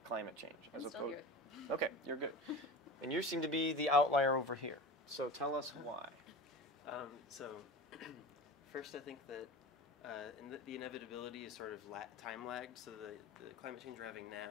climate change. I'm still here. Okay, you're good. And you seem to be the outlier over here. So tell us why. So, first I think that the inevitability is sort of time lagged. So the climate change we're having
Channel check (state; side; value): normal; both; correlation 0.32